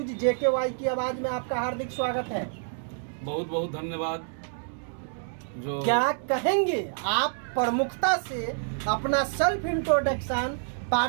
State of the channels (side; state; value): left; silent; digital silence